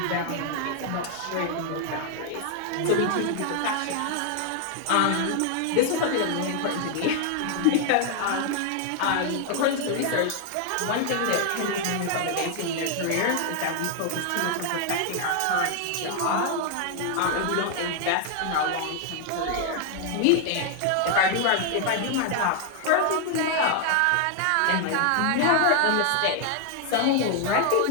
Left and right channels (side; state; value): both; different; correlation 0.00